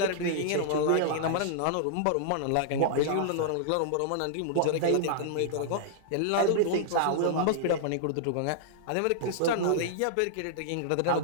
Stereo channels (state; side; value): different; both; correlation -0.01